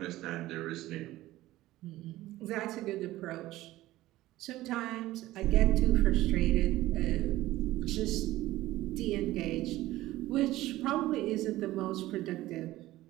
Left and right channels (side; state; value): left; quieter; 16.4 dB